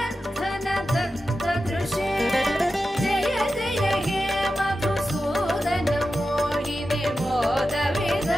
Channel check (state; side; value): normal; both; correlation 0.91